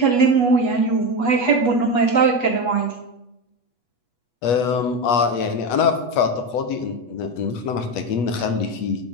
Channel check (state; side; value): late; right; 8.2 ms